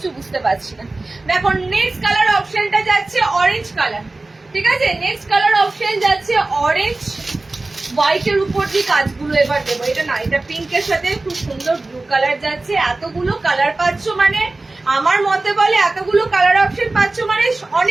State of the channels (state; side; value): quieter; left; 3.1 dB